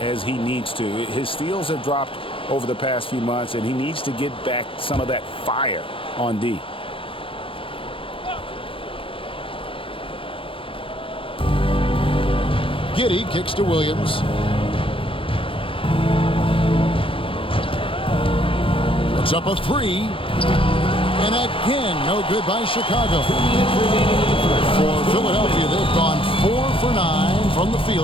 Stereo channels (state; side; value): late; right; 0.26 ms